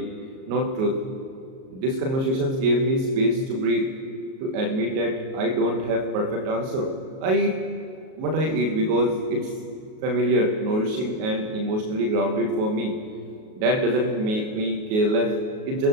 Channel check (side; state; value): left; late; 37 ms